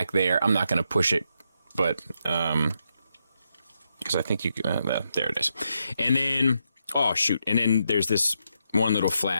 there. I'm not going to push it, but because I think you can, there it is. And then, oh shoot, and then there's this one little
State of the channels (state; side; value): inverted; both; correlation -0.82